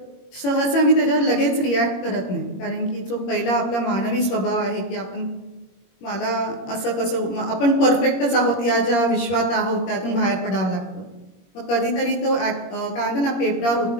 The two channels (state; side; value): late; right; 21 ms